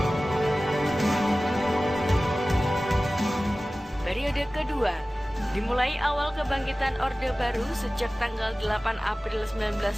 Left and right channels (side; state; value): both; normal; correlation 0.97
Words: Periode kedua dimulai awal kebangkitan Orde Baru sejak tanggal 8 April